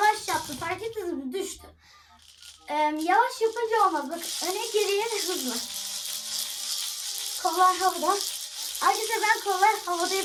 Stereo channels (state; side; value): identical; both; correlation 1.00